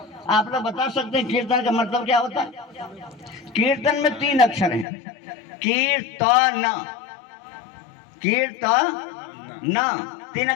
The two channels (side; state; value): right; drops out; at 4.9 s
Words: आप लोग बता सकते हैं कीर्तन का मतलब क्या होता है? कीर्तन में 3 अक्षर हैं, कीर्तन, कीर्तन 3